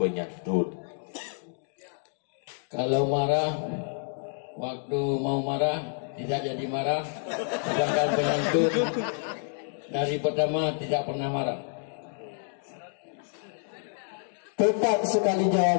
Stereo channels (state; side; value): silent; right; 59 dB below the other